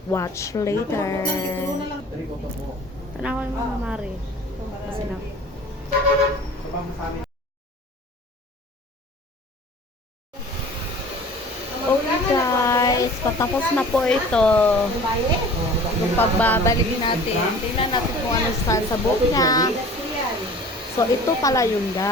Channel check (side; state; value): both; normal; correlation 0.44